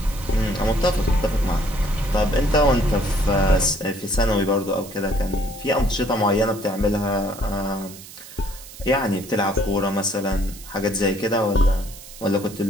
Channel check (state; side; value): noise; right; hiss, 17 dB below the sound